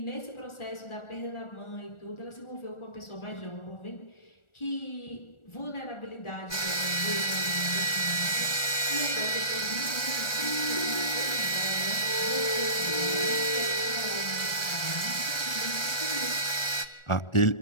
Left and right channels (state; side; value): late; right; 1.4 ms